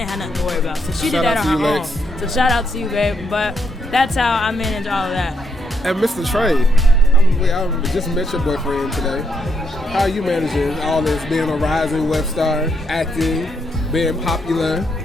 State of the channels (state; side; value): normal; both; correlation 0.76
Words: have nothing to worry about. So she Shout did that out on to her you, own. Lex. So shout out to you, babe. But that's how I manage all of that. And Mr. Trey, I just met your boyfriend today. How are you managing all this, being a rising web star, acting, being popular?